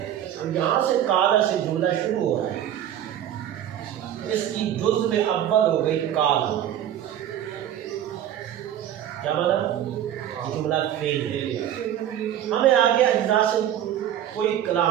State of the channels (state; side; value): quieter; left; 10.9 dB